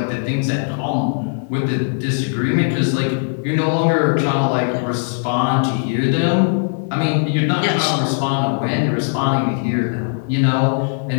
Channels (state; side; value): silent; right; 67 dB below the other